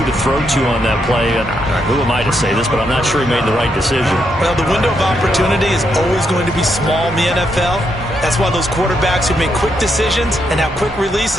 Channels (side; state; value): both; normal; correlation 0.79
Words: to throw to on that play. And who am I to say this, but I'm not sure he made the right decision. Well, the window of opportunity is always going to be small in the NFL. That's why those quarterbacks who make quick decisions and have quick